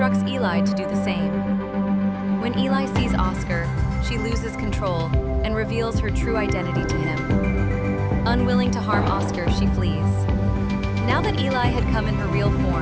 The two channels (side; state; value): both; identical; correlation 1.00